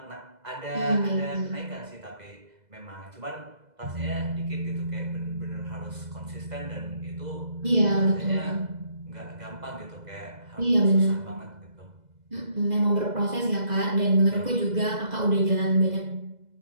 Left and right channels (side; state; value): left; late; 2.0 ms